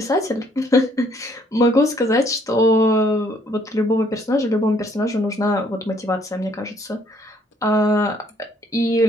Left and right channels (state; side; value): normal; both; correlation 0.65